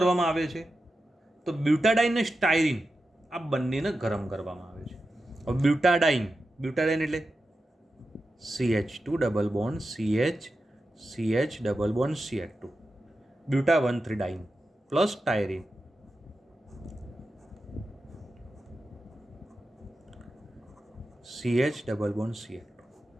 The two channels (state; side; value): normal; both; correlation 0.91